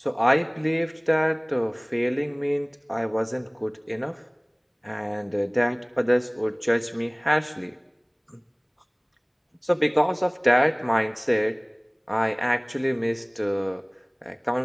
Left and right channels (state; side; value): identical; both; correlation 1.00